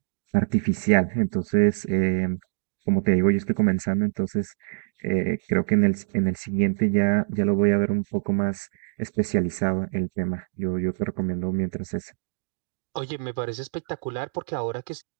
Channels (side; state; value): left; silent; 62 dB below the other